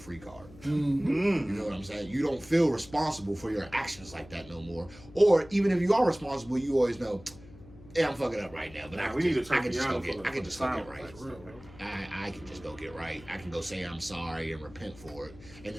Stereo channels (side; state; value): left; noise; hum, 20 dB below the sound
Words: card. Mm-hmm. You know what I'm saying? You don't feel responsible for your actions like that no more. Or even if you are responsible, you always know, yeah, I'm fucking up right now, but I can just go get right. I can just go get right. I can go say I'm sorry and repent for it, and